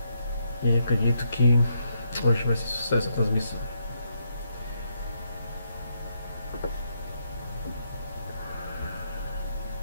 e acredito que hoje vai ser sucesso a transmissão.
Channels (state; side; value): inverted; both; correlation -0.78